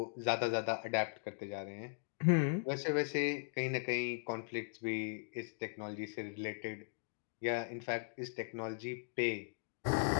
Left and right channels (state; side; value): silent; right; digital silence